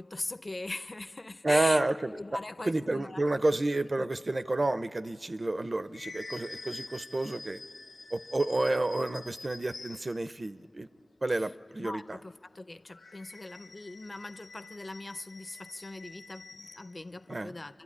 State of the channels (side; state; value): both; normal; correlation 0.98